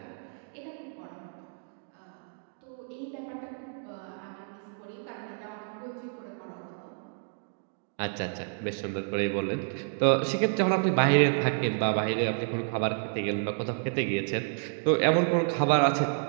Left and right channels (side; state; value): left; silent; digital silence